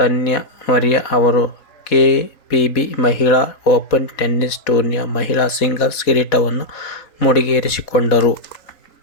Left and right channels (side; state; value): right; late; 3.9 ms